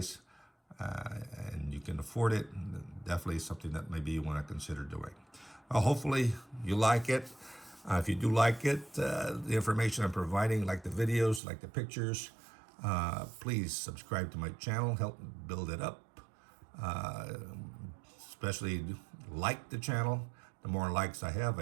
and you can afford it, definitely something that maybe you want to consider doing. Well, hopefully you like it. If you do like it, the information I'm providing, like the videos, like the pictures, please subscribe to my channel, help build it up. Especially like the channel. The more likes I have,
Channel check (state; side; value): drops out; left; at 11.4 s